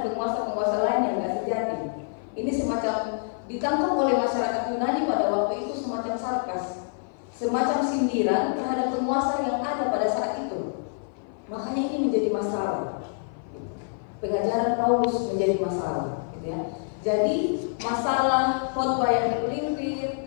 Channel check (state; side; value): silent; right; 57 dB below the other